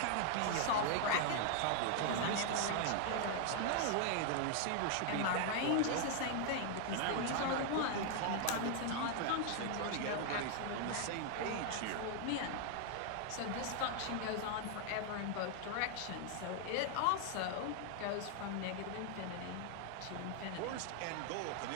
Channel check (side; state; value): both; different; correlation 0.00